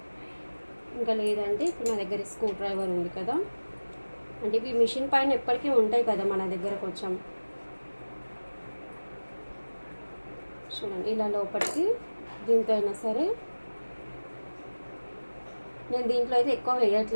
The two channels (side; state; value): both; inverted; correlation -1.00